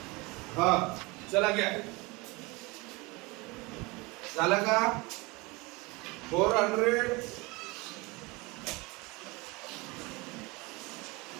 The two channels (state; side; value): quieter; left; 25.1 dB